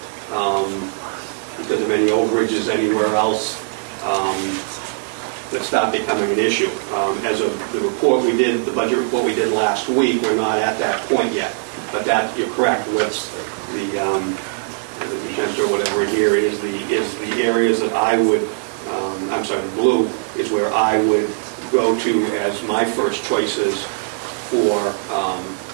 because of any overages anywhere else that start becoming an issue. As of the report we did, the budget report we did last week, we're not at that point yet. But that, you're correct, with the magenta or whatever here is the areas that I would, I'm sorry, the blue is where I would go to as my first choices for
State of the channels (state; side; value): silent; left; digital silence